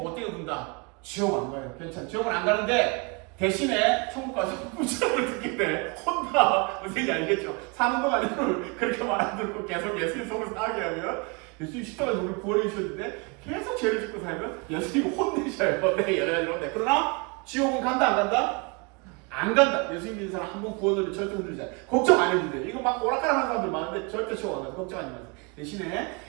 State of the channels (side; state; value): left; quieter; 30.9 dB